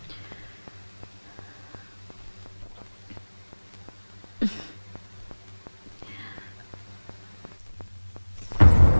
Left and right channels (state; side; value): inverted; both; correlation -1.00